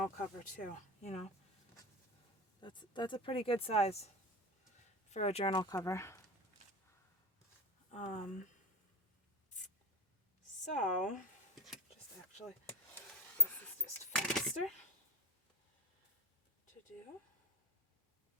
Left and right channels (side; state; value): both; normal; correlation 0.25